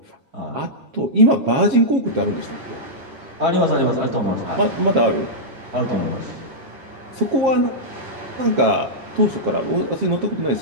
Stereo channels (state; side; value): late; left; 7.4 ms